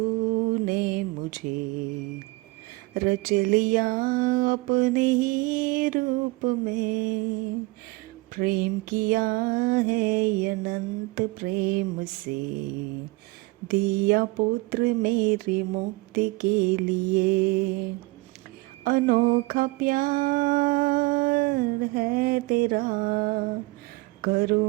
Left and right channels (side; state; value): left; quieter; 23.5 dB